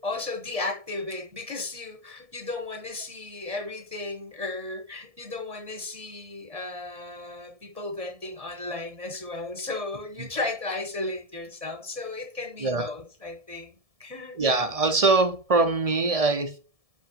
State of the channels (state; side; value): late; left; 1.7 ms